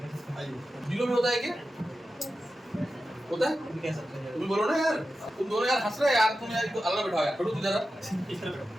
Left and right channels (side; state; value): both; normal; correlation 0.92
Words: जीरो भी होता है क्या? होता है? कह सकते हैं। तुम बोलो ना यार, तुम दोनों यार हंस रहे हैं यार, तुम यार अलग बैठो यार, छोड़ो इधर